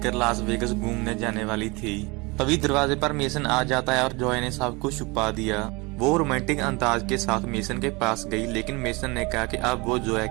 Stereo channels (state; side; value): quieter; left; 26.2 dB